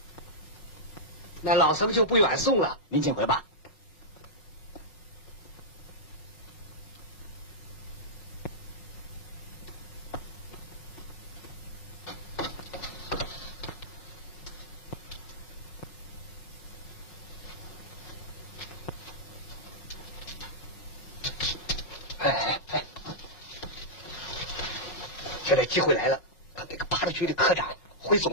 那老僧就不远送了，您请回吧。现在机会来了，他那个八路局的科长回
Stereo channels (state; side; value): late; right; 5.3 ms